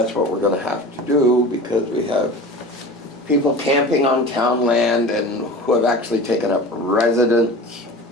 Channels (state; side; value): normal; both; correlation 0.36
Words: what we're gonna have to do, because we have people camping on town land and who have actually taken up residence